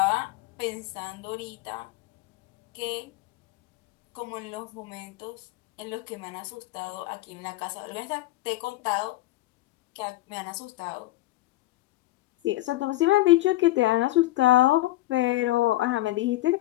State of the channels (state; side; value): quieter; right; 17.2 dB